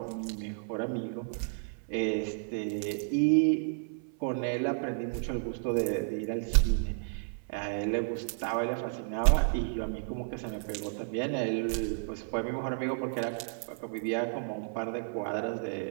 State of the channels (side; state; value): left; silent; 56 dB below the other